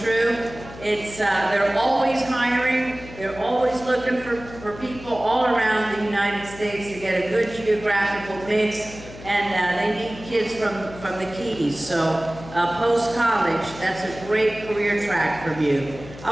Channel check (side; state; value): left; noise; hum, 16 dB below the sound